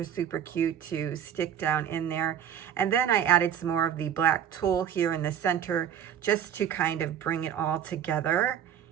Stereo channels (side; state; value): left; quieter; 9.2 dB